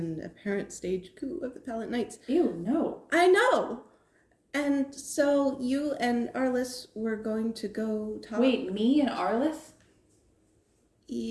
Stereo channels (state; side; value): identical; both; correlation 1.00